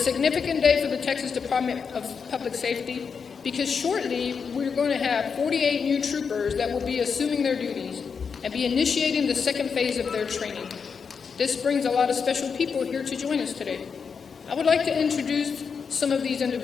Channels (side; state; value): right; quieter; 5.9 dB